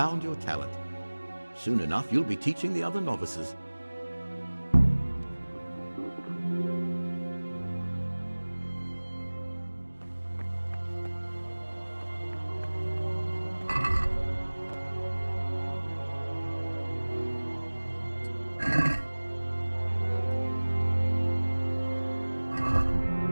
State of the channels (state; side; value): inverted; both; correlation -1.00